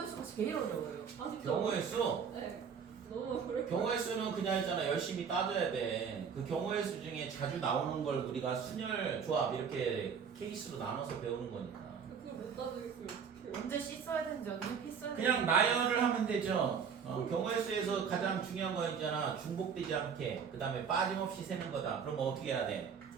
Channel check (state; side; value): quieter; left; 6.7 dB